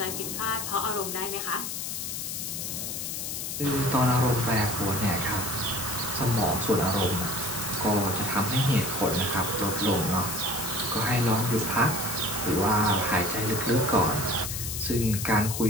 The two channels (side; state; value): left; noise; hiss, 4 dB below the sound